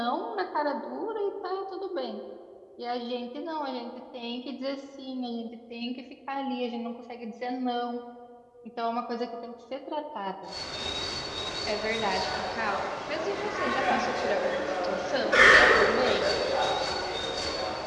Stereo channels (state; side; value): identical; both; correlation 1.00